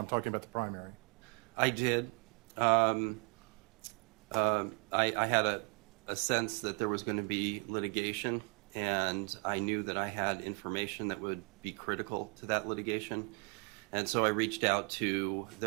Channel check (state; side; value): quieter; left; 34.9 dB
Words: talking about the primary? I did. I had a sense that there was going to be litigation, and I knew that I had information that would be critical to that litigation. And so I reached out to,